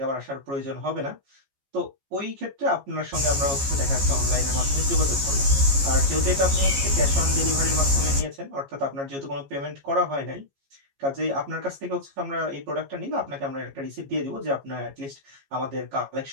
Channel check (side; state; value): left; late; 15 ms